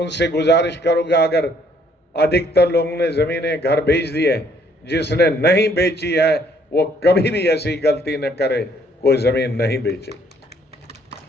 गुजारिश करूंगा, अगर अधिकतर लोगों ने जमीनें घर बेच दी है, जिसने नहीं बेची है वो कभी भी ऐसी गलती न करे, कोई जमीन नहीं बेचे।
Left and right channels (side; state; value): both; normal; correlation 0.64